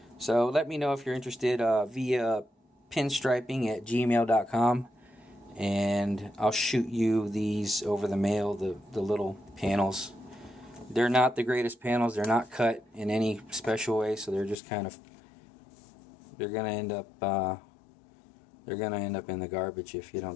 So let me know if you're interested via pinstriping@gmail.com, and I'll shoot you these over the mail, the little panels. They're not the greatest panels. They're not cut in any special way, so they're just kind of, they're gonna end up in the garbage if you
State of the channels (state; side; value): drops out; right; at 14.6 s